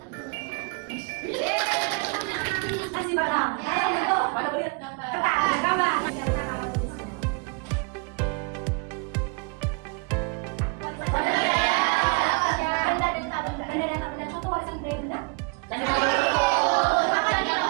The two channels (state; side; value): quieter; left; 32.8 dB